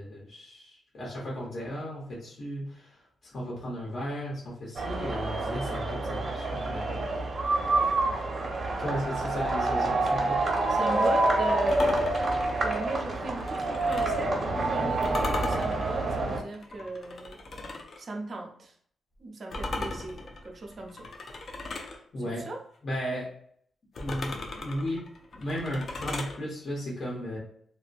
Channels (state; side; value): normal; both; correlation 0.85